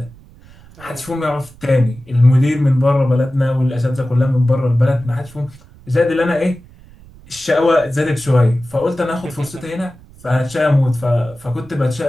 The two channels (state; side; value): noise; right; rumble, 23 dB below the sound